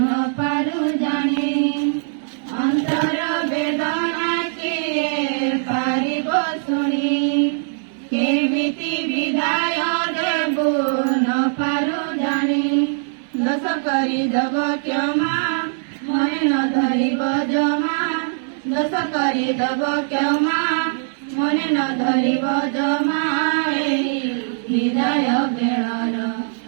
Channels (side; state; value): left; silent; 60 dB below the other